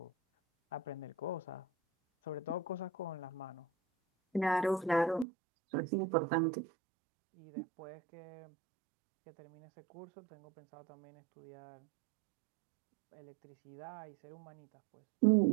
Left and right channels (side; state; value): left; drops out; at 5.2 s